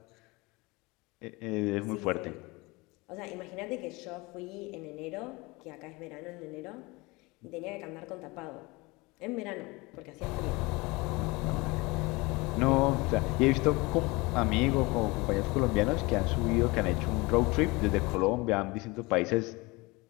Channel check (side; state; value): right; quieter; 24.2 dB